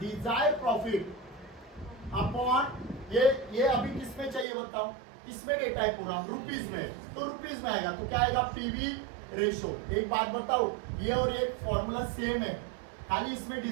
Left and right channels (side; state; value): left; drops out; at 4.5 s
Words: profit upon ये अभी किसमें चाहिए बताओ? किसमें डेटा है पूरा? रुपीज में। तो रुपीज में आएगा तो क्या आएगा? PV ratio. एक बात बताओ, ये और एक फॉर्मूला सेम है, खाली इसमें